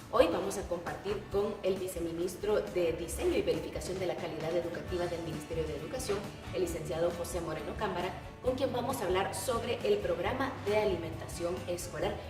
Hoy vamos a compartir con el viceministro de Diseño y Verificación de la Calidad Educativa del Ministerio de Educación, el licenciado José Moreno Cámara, con quien vamos a hablar sobre el programa de alimentación escolar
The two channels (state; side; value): identical; both; correlation 1.00